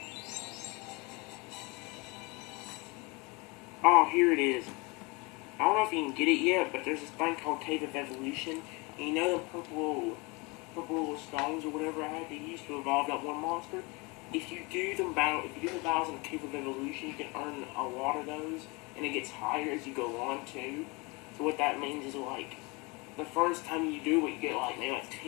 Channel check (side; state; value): right; quieter; 27.1 dB